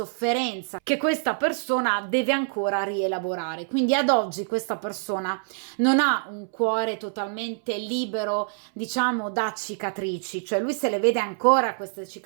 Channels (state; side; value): silent; left; 61 dB below the other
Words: che questa persona deve ancora rielaborare. Quindi ad oggi questa persona non ha un cuore totalmente libero, diciamo, da cicatrici, cioè lui se le vede ancora queste